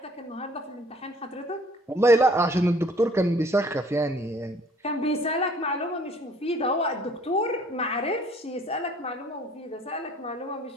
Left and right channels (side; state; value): both; normal; correlation 0.56